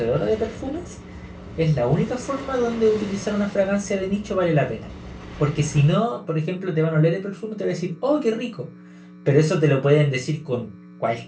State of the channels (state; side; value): identical; both; correlation 1.00